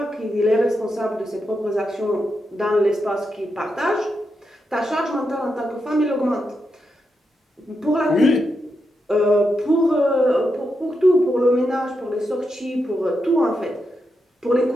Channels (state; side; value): normal; both; correlation 0.85